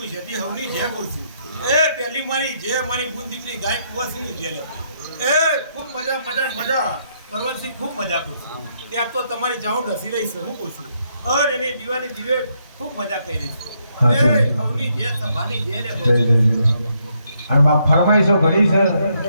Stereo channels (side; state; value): both; inverted; correlation -0.75